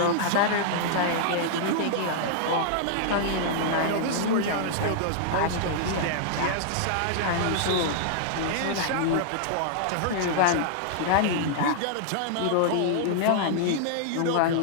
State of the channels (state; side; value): different; both; correlation -0.01